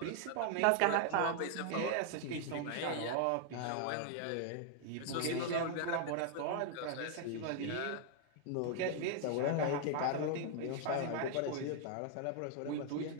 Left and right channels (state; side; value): different; both; correlation 0.00